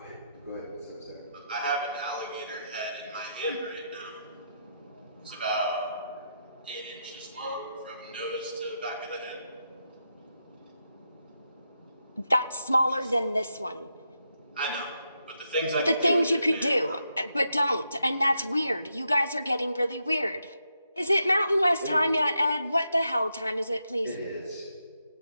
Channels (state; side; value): inverted; both; correlation -0.83